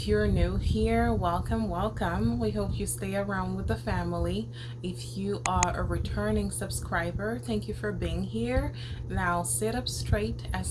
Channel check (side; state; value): both; identical; correlation 1.00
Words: you're new here, welcome. We hope you stay around with the family. If you are a returning subscriber, thank you for being here. Now sit up straight as